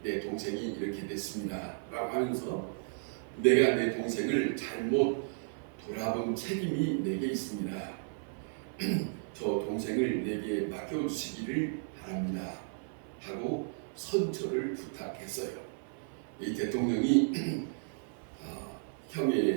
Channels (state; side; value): silent; left; 55 dB below the other